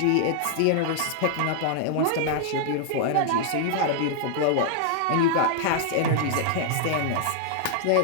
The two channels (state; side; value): different; both; correlation -0.01